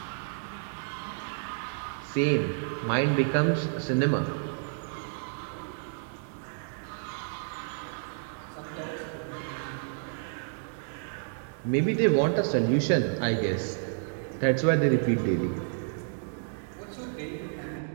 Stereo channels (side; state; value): left; silent; digital silence